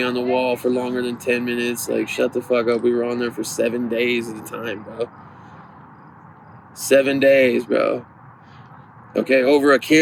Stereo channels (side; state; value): both; identical; correlation 1.00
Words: on the wall for longer than 10 minutes. Like, shut the fuck up. We were on there for 7 days at a time, bro. 7 days, bro. Okay, over a